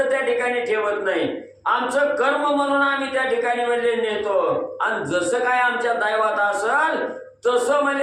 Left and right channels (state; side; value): identical; both; correlation 1.00